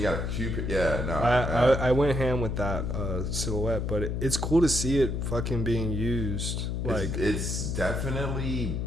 you got a few. Yeah, no. I went ham with that silhouette, but it's cool to see it fucking being used. Like, it's definitely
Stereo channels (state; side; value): noise; left; hum, 1 dB below the sound